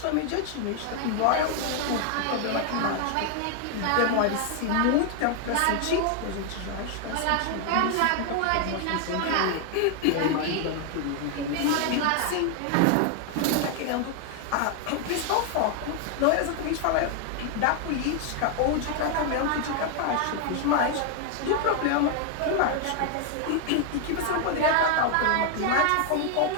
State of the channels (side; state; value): both; different; correlation 0.00